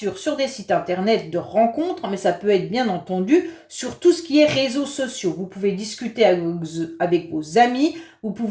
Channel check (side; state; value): both; identical; correlation 1.00